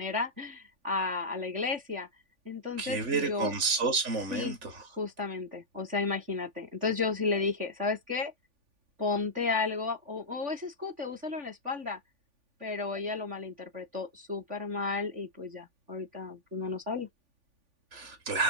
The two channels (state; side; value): late; left; 3.5 ms